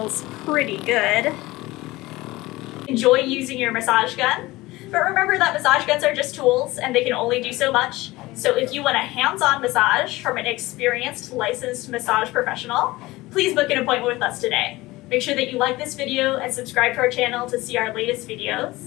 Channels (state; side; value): quieter; right; 19.6 dB